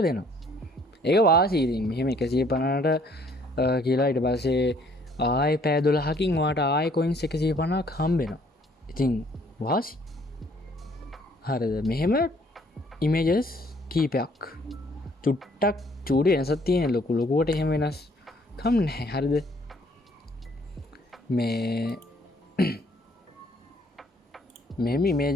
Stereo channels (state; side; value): normal; both; correlation 0.62